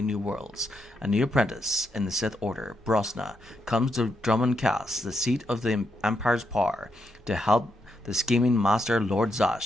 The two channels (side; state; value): both; normal; correlation 0.80